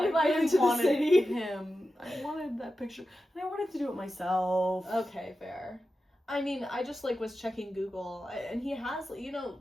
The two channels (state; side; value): normal; both; correlation 0.92